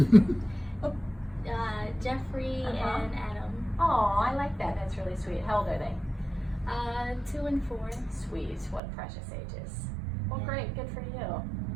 Jeffrey and Adam. Oh, I like that. That's really sweet. How old are they? 2 and 4. Sweet. What precious ages. Well, great. Good for you.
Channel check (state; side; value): drops out; left; at 8.8 s